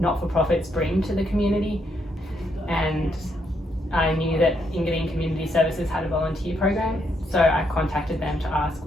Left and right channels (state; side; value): normal; both; correlation 0.76